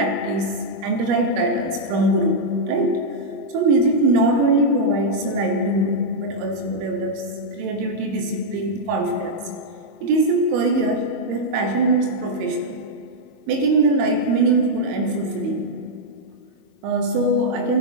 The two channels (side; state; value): left; late; 23 ms